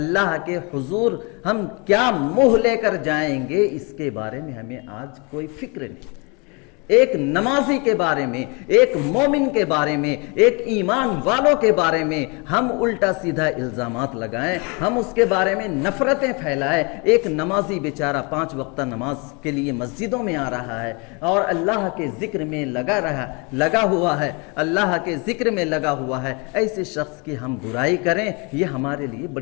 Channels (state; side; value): quieter; right; 31.0 dB